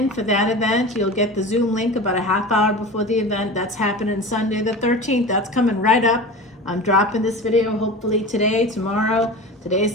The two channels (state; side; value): normal; both; correlation 0.32